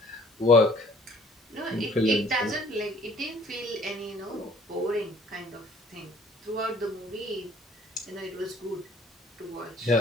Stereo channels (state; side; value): normal; both; correlation 0.55